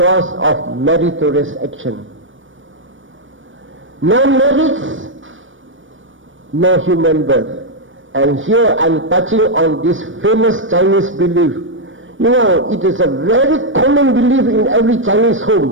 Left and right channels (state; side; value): late; left; 0.56 ms